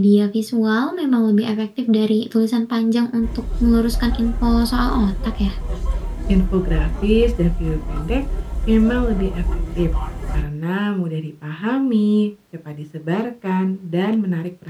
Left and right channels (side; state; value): both; identical; correlation 1.00